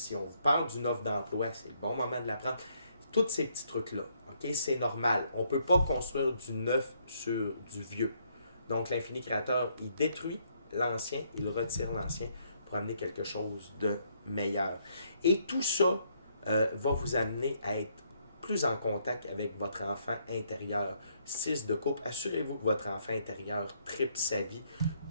on vous parle d'une offre d'emploi, c'est le bon moment de la prendre. Tous ces petits trucs-là, OK? OK? C'est normal. On ne peut pas construire du neuf sur du vieux. Donc, l'infini créateur, il détruit l'ancien, il retire l'ancien pour amener quelque chose de meilleur. Et tout ça va vous amener à être plus en contact avec votre enfant intérieur. 6 de coupe, assurez-vous que votre enfant intérieur tripe sa vie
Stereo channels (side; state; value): both; inverted; correlation -0.71